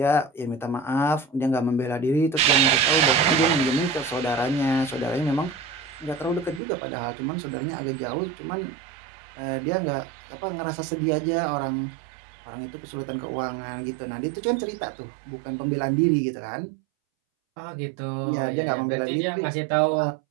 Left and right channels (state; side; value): drops out; left; at 6.6 s